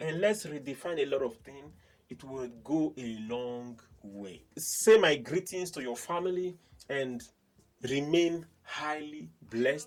let's redefine a lot of things. It will go a long way. Say my greetings to your family and remain highly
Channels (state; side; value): identical; both; correlation 1.00